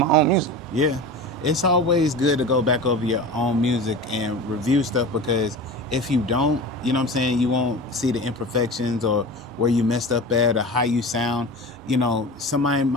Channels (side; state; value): both; normal; correlation 0.31